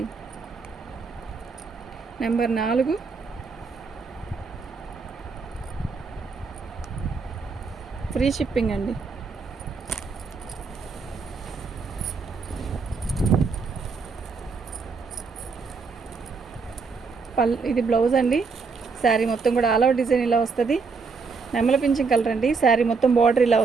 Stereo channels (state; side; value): quieter; left; 4.8 dB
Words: నెంబర్ 4 ఫ్రీ షిప్పింగ్ అండి. ఇది బ్లౌజ్ అండి. శారీ మొత్తం కూడా ఆల్ ఓవర్ డిజైన్ ఇలా వస్తుంది. నెమల పింఛన్ కలర్ అండి. శారీ మొత్తం బార్డర్ ఇలా